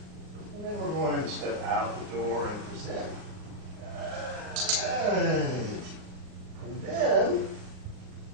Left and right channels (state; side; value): late; left; 39 ms